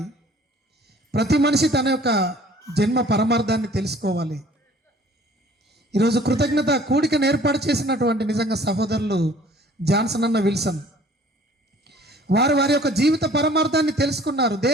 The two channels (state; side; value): normal; both; correlation 0.52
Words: ప్రతి మనిషి తన యొక్క జన్మ పరమార్థాన్ని తెలుసుకోవాలి. ఈరోజు కృతజ్ఞత కూడికను ఏర్పాటు చేసినటువంటి నిజంగా సహోదరులు జాన్సన్ అన్న విల్సన్ వారు వారి యొక్క జీవిత పరమార్థాన్ని తెలుసుకున్నారు.